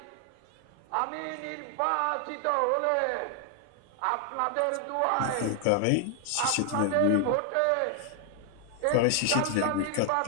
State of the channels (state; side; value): different; both; correlation 0.00